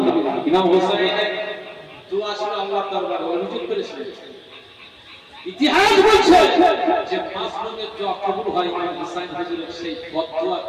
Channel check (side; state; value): both; identical; correlation 1.00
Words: ইমাম হুসাইনের দোয়া ছিল আল্লাহর দরবারে, অনুযোগ করেছিলেন। ইতিহাস বলছে যে মাসলুমের দোয়া কবুল হয় ইমাম হুসাইন হুজুরের সেই